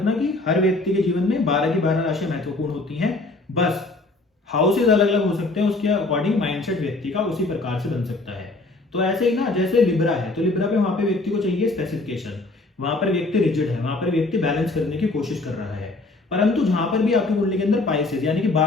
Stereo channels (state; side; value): quieter; right; 3.1 dB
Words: कि हर व्यक्ति के जीवन में 12 की 12 राशियां महत्वपूर्ण होती हैं। बस हाउसेज अलग अलग हो सकते हैं, उसके अकॉर्डिंग माइंडसेट व्यक्ति का उसी प्रकार से बन सकता है। तो ऐसे ही ना, जैसे लिब्रा है तो लिब्रा पे वहां पे व्यक्ति को चाहिए स्पेसिफिकेशन, वहां पर व्यक्ति रिजिड है, वहां पर व्यक्ति बैलेंस करने की कोशिश कर रहा है। परंतु जहां पर भी आपकी कुंडली के अंदर पाइसेस यानी कि